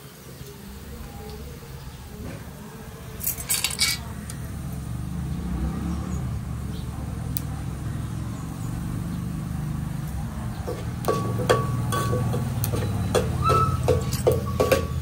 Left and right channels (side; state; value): both; identical; correlation 1.00